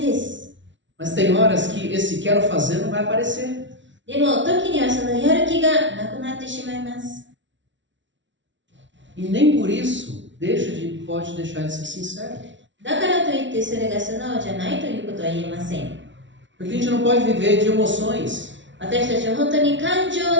です。 Mas tem horas que esse quero fazer não vai aparecer. でも、時にはそのやる気がなくなってしまいます。 E nem por isso pode deixar de ser sincero. だからといってそれが素直じゃないということは言えません。 Porque a gente não pode viver de emoções. 私たちは本当に感情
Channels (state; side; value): late; left; 0.55 ms